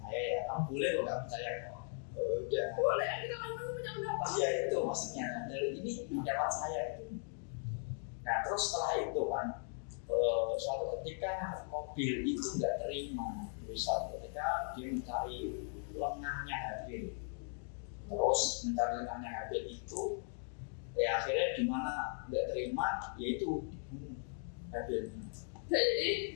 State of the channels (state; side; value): silent; right; 52 dB below the other